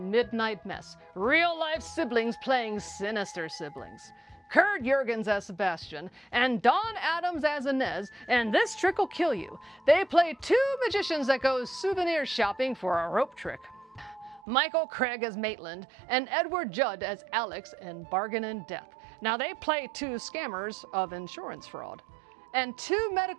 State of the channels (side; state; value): left; drops out; at 14.4 s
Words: Midnight Mess. Real-life siblings playing sinister siblings. Kurt Jurgens as Sebastian, and Dawn Adams as Inez, and This Trick Will Kill You. They play 2 magicians that go souvenir shopping for a rope trick. Michael Craig as Maitland, and Edward Judd as Alex in Bargain in Death. Now they play 2 scammers of insurance fraud. And 2